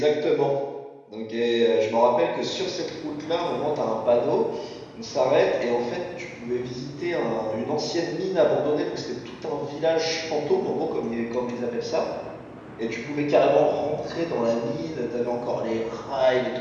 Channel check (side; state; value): both; identical; correlation 1.00